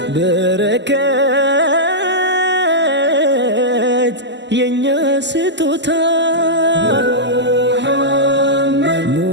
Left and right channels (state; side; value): late; left; 0.51 ms